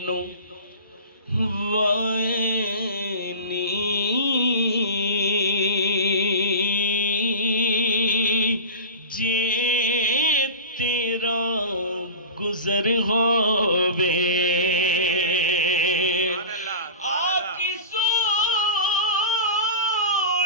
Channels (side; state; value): both; inverted; correlation -0.32